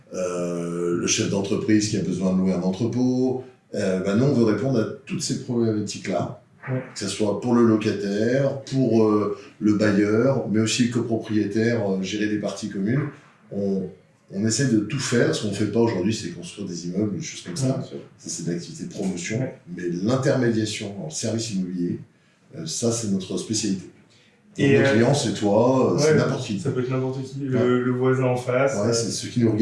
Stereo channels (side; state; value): both; identical; correlation 1.00